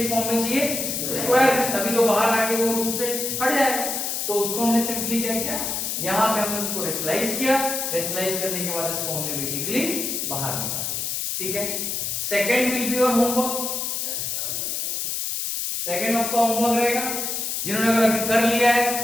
फॉर्म में चाहिए, स्क्वायर में, तभी तो बाहर आके वो रूट से हट जाएगा। तो उसको हमने सिंपली क्या किया, यहां पे हमने उसको रेशनलाइज किया, रेशनलाइज करने के बाद इसको हमने बेसिकली बाहर निकाला, ठीक है। Second will be your homework, second आपका होमवर्क रहेगा। जिन्होंने अगर अभी कर लिया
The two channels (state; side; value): noise; left; hiss, 2 dB below the sound